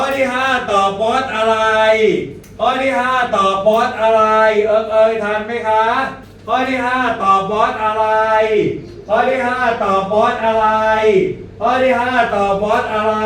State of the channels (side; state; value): both; identical; correlation 1.00